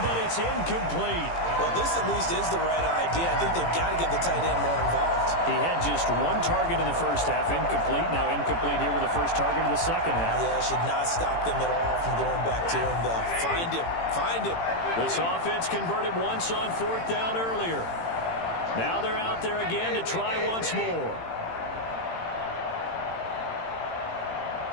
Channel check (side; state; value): right; late; 18 ms